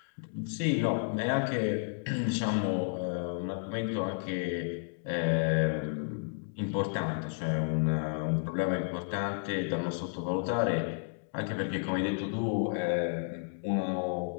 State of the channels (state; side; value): silent; right; digital silence